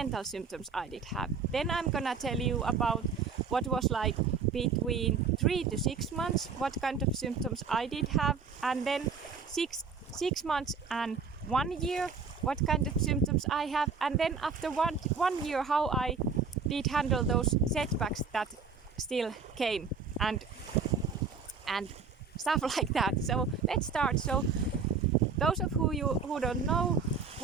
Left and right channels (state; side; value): quieter; left; 5.4 dB